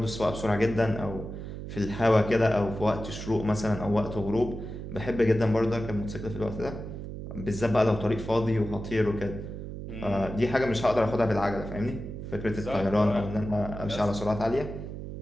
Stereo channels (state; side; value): noise; right; hum, 8 dB below the sound